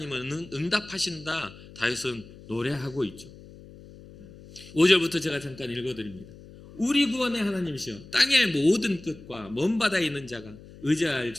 응답하신다. 다윗은 노래하고 있죠. 5절부터 제가 잠깐 읽어드립니다. 우리 구원의 하나님이시여 땅의 모든 끝과 먼 바다에 있는 자가 의지할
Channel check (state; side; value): noise; left; hum, 19 dB below the sound